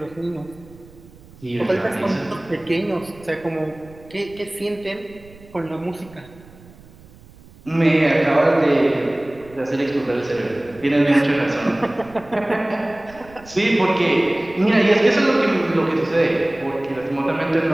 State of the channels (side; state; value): right; noise; rumble, 23 dB below the sound